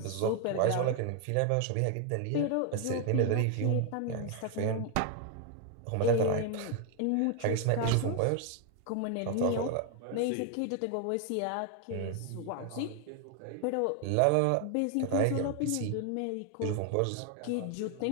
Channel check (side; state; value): both; different; correlation 0.01